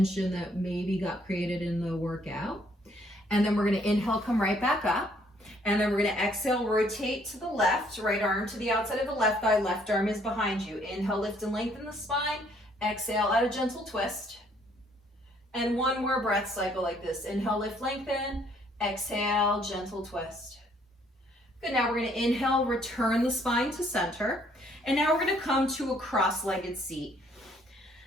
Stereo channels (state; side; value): normal; both; correlation 0.65